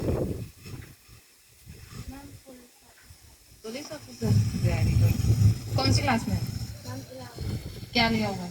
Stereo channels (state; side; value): identical; both; correlation 1.00